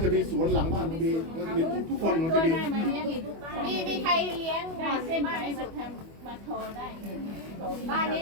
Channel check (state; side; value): late; left; 25 ms